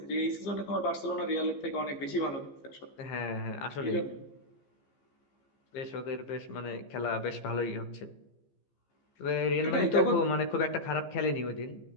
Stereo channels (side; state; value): right; late; 15 ms